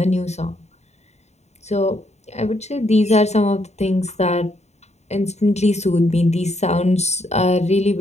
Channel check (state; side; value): late; right; 0.32 ms